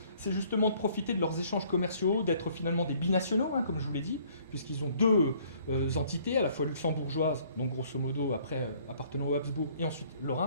c'est justement de profiter de leurs échanges commerciaux, d'être finalement des binationaux, comme je vous l'ai dit, puisqu'ils ont deux entités, à la fois luxembourgeoises, donc grosso modo après appartenant au Habsbourg, et ensuite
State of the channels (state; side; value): inverted; both; correlation -0.60